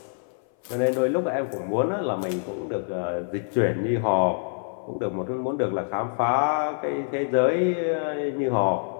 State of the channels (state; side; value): silent; right; 58 dB below the other